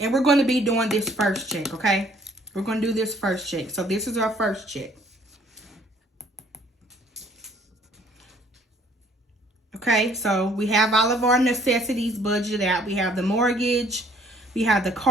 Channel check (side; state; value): both; normal; correlation 0.60